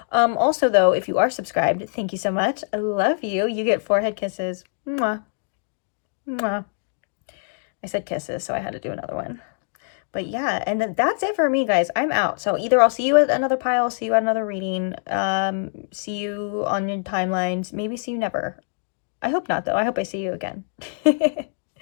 Also, though, if you are subscribed, thank you so much. I love you. You get forehead kisses. Mwah. Mwah. I said kisses, so I had to do another one. But yeah, and that's it for me, guys. I'm out. So either I'll see you at another pile, see you at another reading, see you on your timelines, maybe see you never. I hope not, though. I hope I see you again.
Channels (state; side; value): silent; right; digital silence